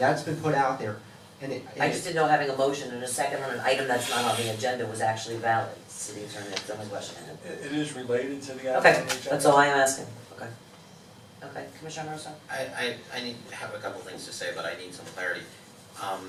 been put out there. And I just didn't know having a motion and a second on an item that's not on the agenda was actually valid. City Attorney, that's the only question I had. It is related to the item Okay, on the agenda. that's all I am asking. Okay. Okay, Commissioner Russo? I need to have a couple things to say, but I need some clarity.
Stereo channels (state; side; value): identical; both; correlation 1.00